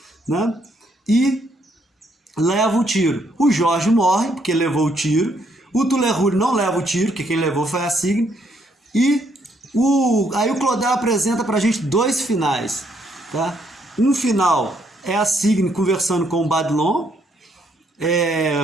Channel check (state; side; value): normal; both; correlation 0.71